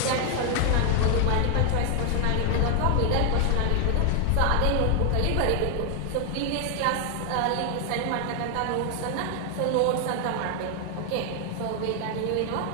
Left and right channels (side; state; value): both; different; correlation 0.00